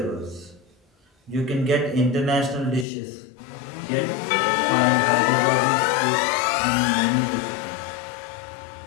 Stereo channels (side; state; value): right; drops out; at 2.9 s